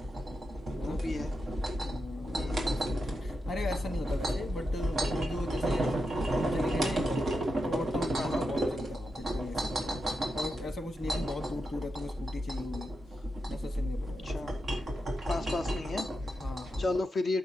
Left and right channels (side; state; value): both; normal; correlation 0.87